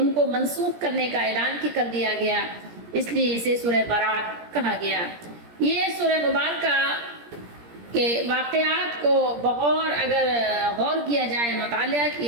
کو منسوخ کرنے کا اعلان کر دیا گیا، اس لیے اسے سورہ برات کہا گیا۔ یہ سورہ مبارکہ کہ واقعات کو بغور اگر غور کیا جائے، مطالعہ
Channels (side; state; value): left; late; 17 ms